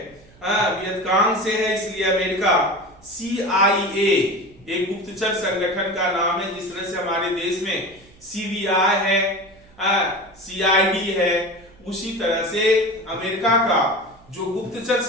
वियतकांग से है, इसलिए अमेरिका CIA एक गुप्तचर संगठन का नाम है, जिस तरह से हमारे देश में CBI है, CID है, उसी तरह से अमेरिका का जो गुप्तचर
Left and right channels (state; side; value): noise; right; hum, 27 dB below the sound